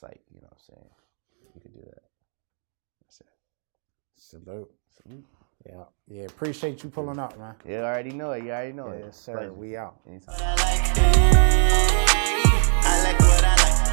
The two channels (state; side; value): silent; left; digital silence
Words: you know what I'm saying? You can do that. That's it. Salute. Yeah. Appreciate you pulling up, man. Yeah, I already know it. Yes, sir. We out. Anytime.